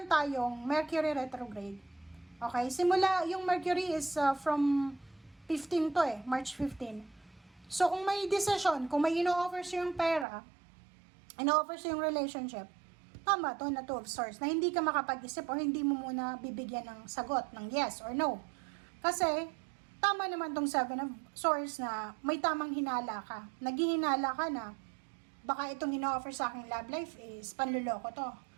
tayong Mercury retrograde. Okay? Simula, yung Mercury is from 15 to March 15. So, kung may decision, kung may ino-offer siyang pera, ino-offer siyang relationship, tama to na Two of Swords, na hindi ka makapag-isip o hindi mo muna bibigyan ng sagot, ng yes or no. Kasi, tama naman tong Seven of Swords na may tamang hinala ka. Naghihinala ka na baka itong ino-offer sa aking love life is panluloko to.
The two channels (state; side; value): drops out; left; at 10.2 s